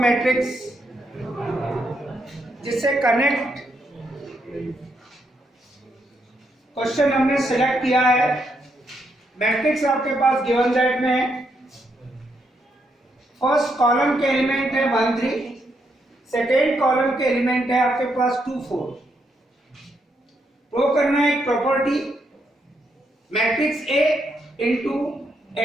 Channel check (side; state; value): both; normal; correlation 0.78